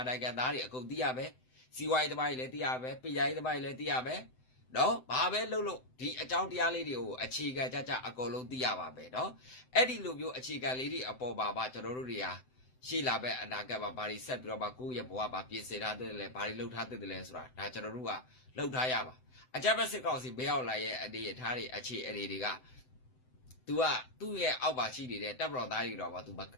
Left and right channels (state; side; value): late; right; 7.8 ms